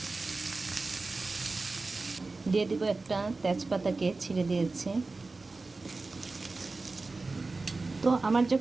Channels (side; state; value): left; quieter; 3.6 dB